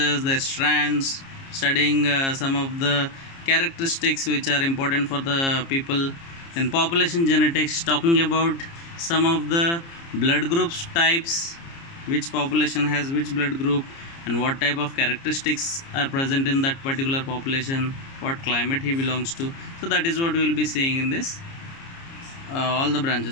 their strands, studying some of the characteristics which are important for the people. Then population genetics, talking about some of the blood groups types, which population has which blood group and what type of characteristics are present in that particular population, what climate he belongs to. So that is what we will be seeing in this all the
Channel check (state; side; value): late; right; 30 ms